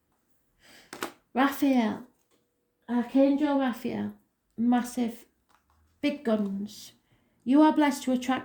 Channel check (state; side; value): identical; both; correlation 1.00